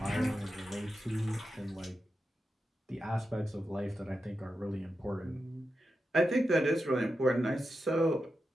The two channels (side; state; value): both; normal; correlation 0.89